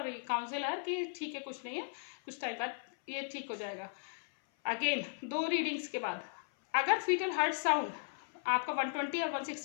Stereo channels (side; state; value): right; silent; 53 dB below the other